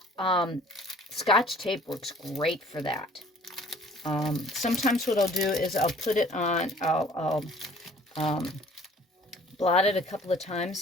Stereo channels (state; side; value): normal; both; correlation 0.53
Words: Scotch tape works great for that. Sometimes what I'll do is I'll put it on, I'll blot it a couple of